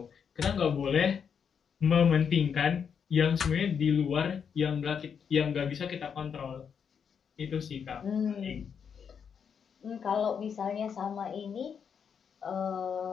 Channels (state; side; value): quieter; right; 7.0 dB